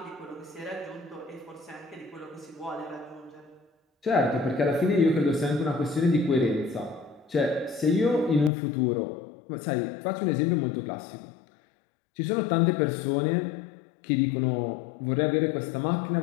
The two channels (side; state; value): right; drops out; at 8.5 s